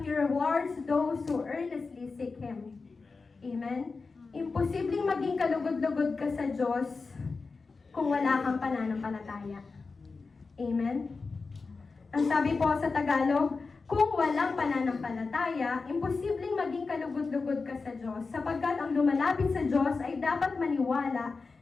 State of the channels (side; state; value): right; quieter; 4.3 dB